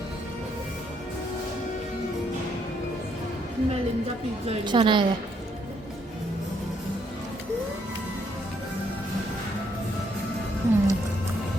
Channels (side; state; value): both; normal; correlation 0.72